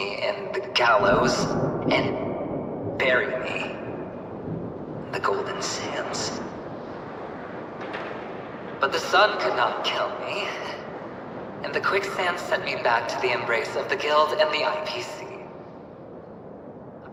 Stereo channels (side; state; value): both; identical; correlation 1.00